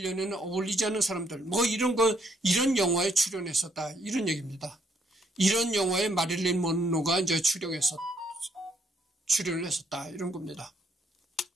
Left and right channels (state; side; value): normal; both; correlation 0.70